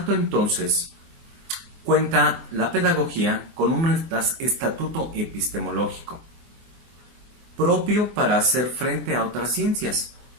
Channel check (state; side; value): late; left; 24 ms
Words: entonces, cuenta la pedagogía con un estatuto epistemológico propio para hacer frente a otras ciencias.